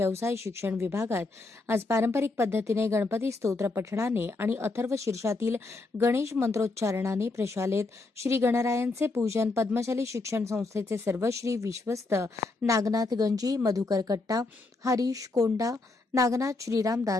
शिक्षण विभागात आज पारंपरिक पद्धतीने गणपती स्तोत्र पठणाने आणि अथर्व शीर्षातील गणेश मंत्रोच्चारणाने प्रशालेत श्री गणरायांचे पूजन पद्मशाली शिक्षण संस्थेचे सर्वश्री विश्वस्त नागनाथ गंजी, मधुकर कट्टा, हरीश कोंडा, नागनाथ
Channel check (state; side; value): quieter; right; 3.4 dB